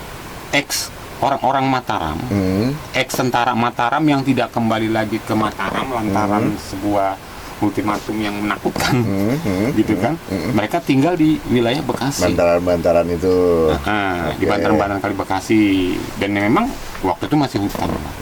orang-orang Mataram, ex-tentara Mataram yang tidak kembali lagi ke Mataram lantaran sebuah ultimatum yang menakutkan, gitu kan? Mereka tinggal di wilayah Bekasi. Bantaran-bantaran itu. Di bantaran-bantaran kali Bekasi, dan memang waktu itu masih hutan.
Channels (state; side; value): identical; both; correlation 1.00